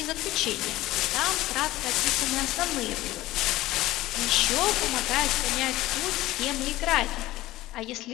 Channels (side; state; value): right; quieter; 16.9 dB